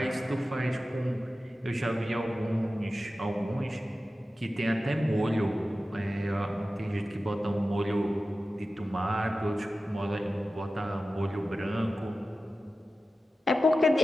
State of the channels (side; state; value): both; normal; correlation 0.94